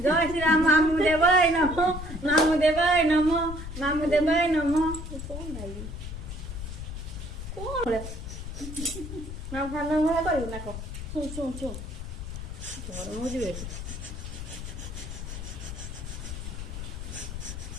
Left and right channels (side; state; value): left; noise; rumble, 8 dB below the sound